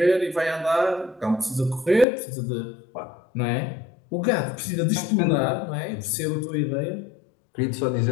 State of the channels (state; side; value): drops out; right; at 2.1 s